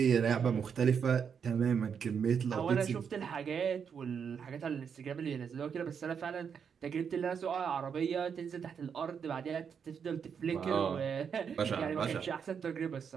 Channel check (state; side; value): quieter; left; 7.0 dB